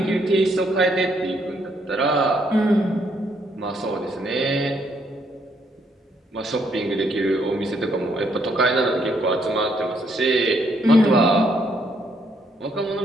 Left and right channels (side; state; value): both; normal; correlation 0.72